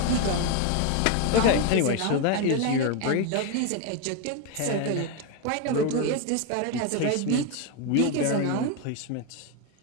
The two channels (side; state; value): both; different; correlation 0.02